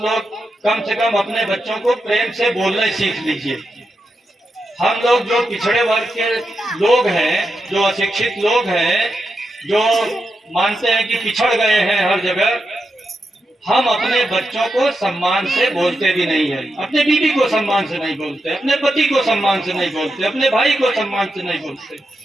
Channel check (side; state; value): both; normal; correlation 0.87